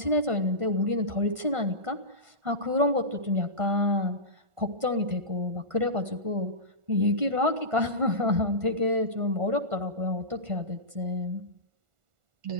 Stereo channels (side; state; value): left; late; 1.4 ms